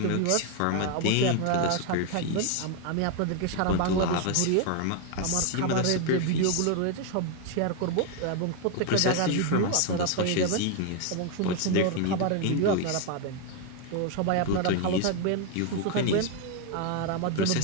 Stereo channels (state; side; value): different; both; correlation 0.01